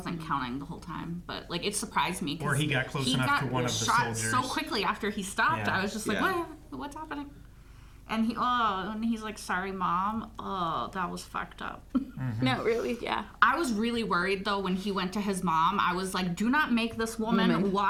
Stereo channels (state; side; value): identical; both; correlation 1.00